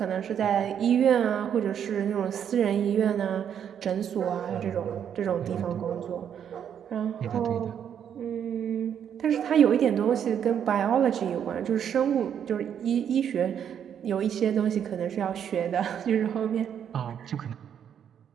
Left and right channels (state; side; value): quieter; left; 8.7 dB